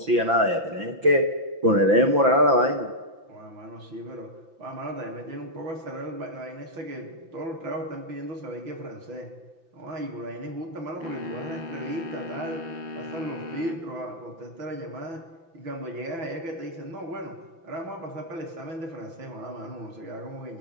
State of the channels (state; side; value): late; left; 6.0 ms